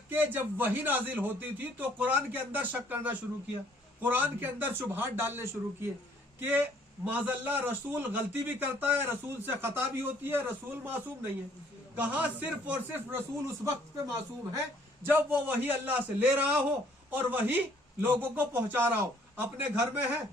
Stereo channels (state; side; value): normal; both; correlation 0.61